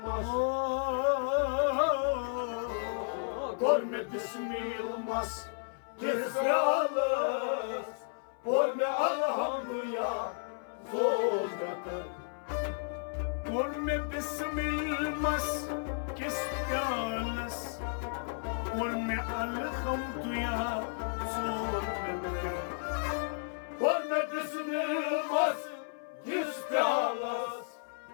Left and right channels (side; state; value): right; silent; 56 dB below the other